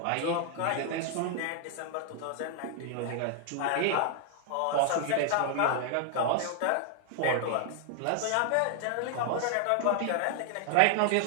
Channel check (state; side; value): different; both; correlation 0.00